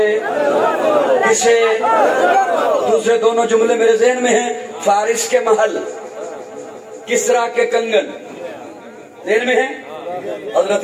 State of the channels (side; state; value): both; identical; correlation 1.00